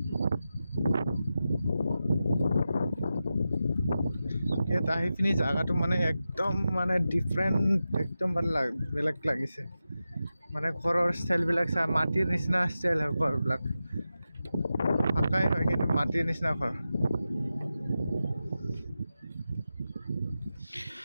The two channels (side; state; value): both; inverted; correlation -0.92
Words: ইয়াত আহি পিনি জাগাটো মানে একদম মানে ডিফাৰেণ্ট একদম বেলেগ লাগিছে। মানে ঘৰৰ ষ্টাইলবিলাক চা মাটিৰ নিচিনা ষ্টাইল হয় ঘৰবিলাক। পাকাই হয় কিন্তু মাটিৰ নিচিনা ঘৰ।